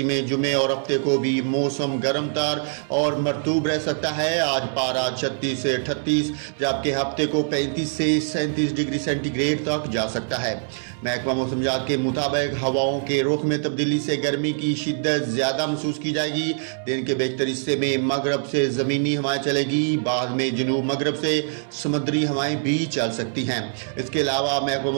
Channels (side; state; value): left; silent; 63 dB below the other